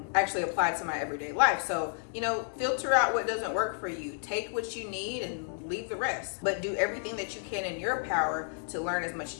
actually apply to my everyday life. So, you know, filter out what doesn't work for you. Take what you need and leave the rest. But do everything that you can in your power to learn as much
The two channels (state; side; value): silent; right; 57 dB below the other